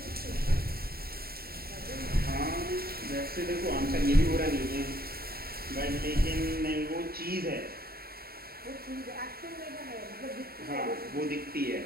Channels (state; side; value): late; left; 0.44 ms